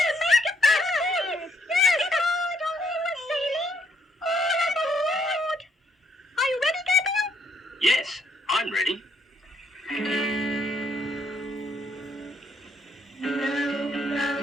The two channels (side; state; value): both; normal; correlation 0.71